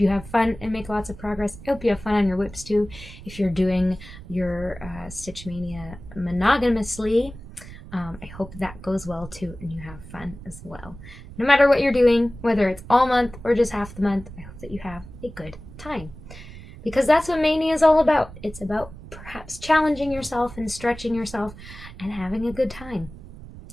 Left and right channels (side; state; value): right; noise; rumble, 16 dB below the sound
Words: have fun and make lots of progress. I hope you have fun on your whips too. If you're doing your Stitch Mania monogamously, I hope that goes well too, and you have fun as well. No matter what you're doing, whether it's all month or just half the month, I hope that you have a good time. Because that's what Mania is all about. It's about perhaps challenging yourself and stretching yourself and having a good time.